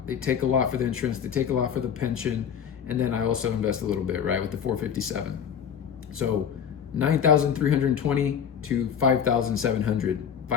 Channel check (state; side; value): quieter; right; 7.9 dB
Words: They take a lot for the insurance. They take a lot for the pension. And then I also invest a little bit, right? With the 457. So 9,320 to 5,700.